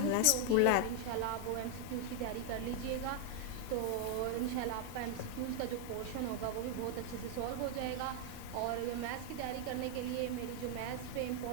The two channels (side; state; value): both; different; correlation 0.00